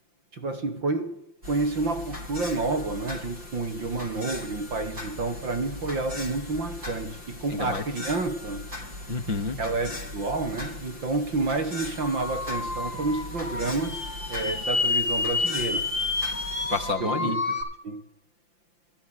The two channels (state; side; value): late; left; 5.8 ms